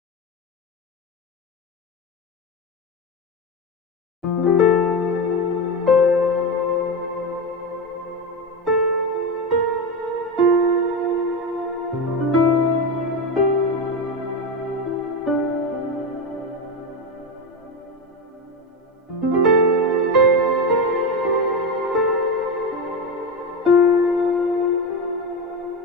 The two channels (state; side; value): normal; both; correlation 0.17